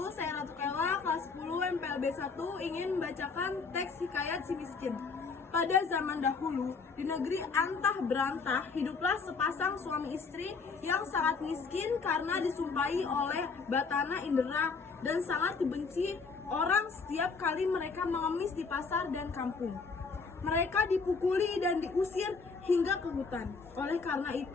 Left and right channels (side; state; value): right; quieter; 4.8 dB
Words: Saya Ratu Kela, kelas 10 MPLB 1, ingin membacakan teks hikayat si miskin. Pada zaman dahulu, di negeri antah berantah, hiduplah sepasang suami istri yang sangat miskin karena disumpahi oleh batana indera dan sangat dibenci orang setiap kali mereka mengemis di pasar dan kampung. Mereka dipukuli dan diusir hingga ke hutan. Oleh karena